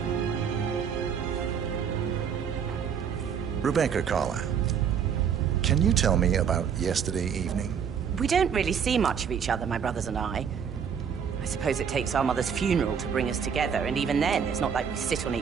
Rebecca Carlisle, can you tell me about yesterday evening? We don't really see much of each other, my brothers and I. I suppose it takes our mother's funeral to bring us together, and even then, it's not like we sit on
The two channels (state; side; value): quieter; left; 7.4 dB